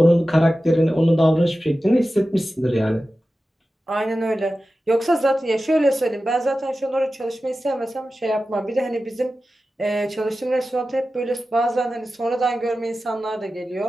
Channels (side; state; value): both; normal; correlation 0.94